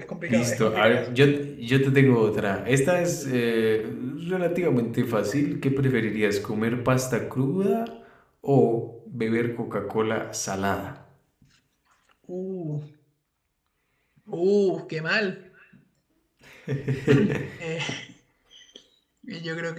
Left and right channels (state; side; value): identical; both; correlation 1.00